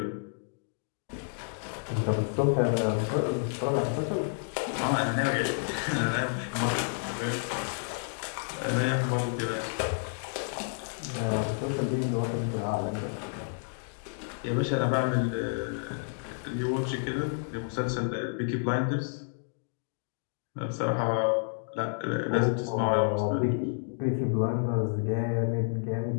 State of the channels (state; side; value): silent; right; digital silence